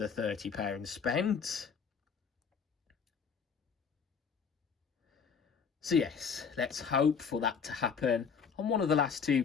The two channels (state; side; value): quieter; right; 6.3 dB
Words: £30 spent. So yes, let's hope for that to happen. On one of the last two